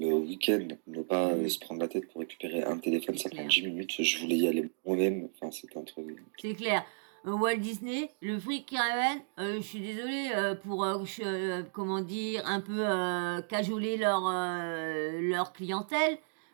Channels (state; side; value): silent; left; digital silence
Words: week-end, ne pas se prendre la tête pour récupérer un téléphone, ça prend 10 minutes, je voulais y aller moi-même, enfin c'était un truc. C'est clair. Walt Disney, le fric qui ramène, je suis désolée pour, un peu cajoler leur clientèle.